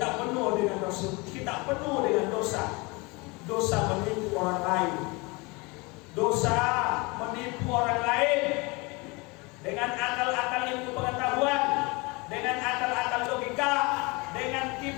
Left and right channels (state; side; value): quieter; right; 26.7 dB